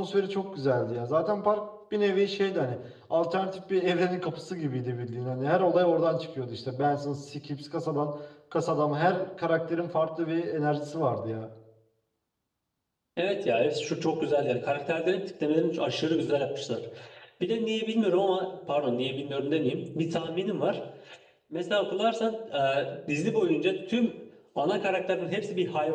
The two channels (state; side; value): identical; both; correlation 1.00